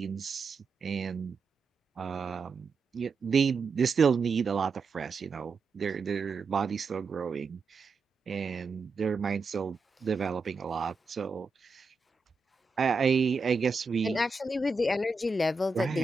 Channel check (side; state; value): left; quieter; 4.1 dB